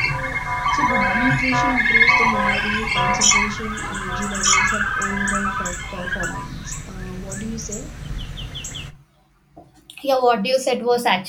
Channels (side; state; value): both; identical; correlation 1.00